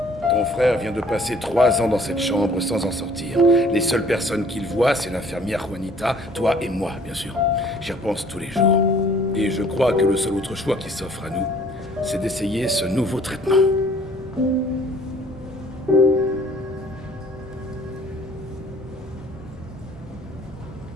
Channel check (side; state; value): both; normal; correlation 0.56